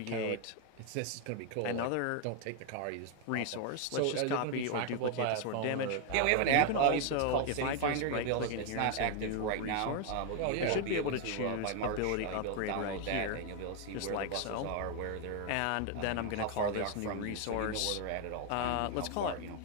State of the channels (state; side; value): different; both; correlation 0.01